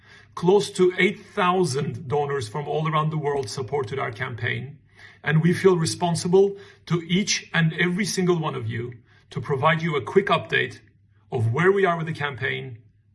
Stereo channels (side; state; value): both; identical; correlation 1.00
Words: Close to 8,000 donors from all around the world supported our campaign, and we feel responsible to each and every single one of you to provide you a quick update of where we are with the campaign